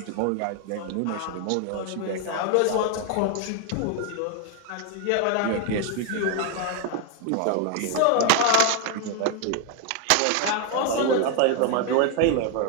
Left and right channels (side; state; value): both; different; correlation 0.01